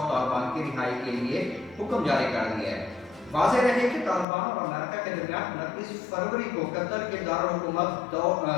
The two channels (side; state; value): right; drops out; at 4.2 s